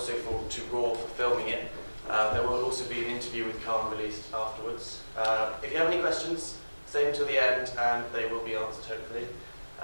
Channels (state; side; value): inverted; both; correlation -1.00